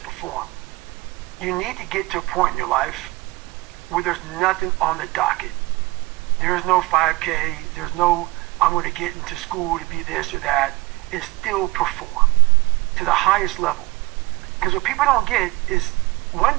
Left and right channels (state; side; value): quieter; left; 22.1 dB